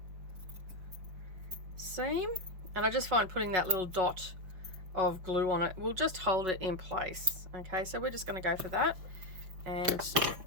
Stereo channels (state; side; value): late; left; 5.4 ms